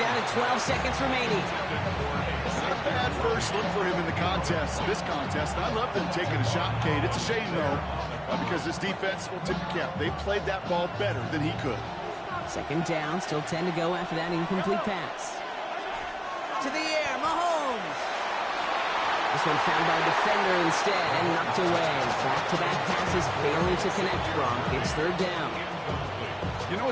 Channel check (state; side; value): identical; both; correlation 1.00